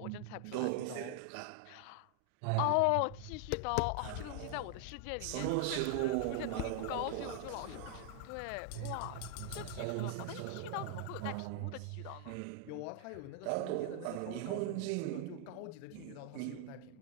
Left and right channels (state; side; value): different; both; correlation 0.00